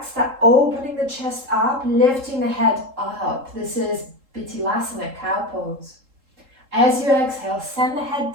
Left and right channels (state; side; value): late; left; 3.7 ms